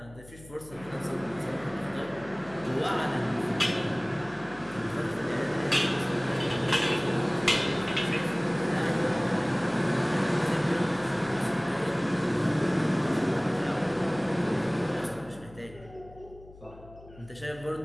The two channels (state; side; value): noise; left; hum, 20 dB below the sound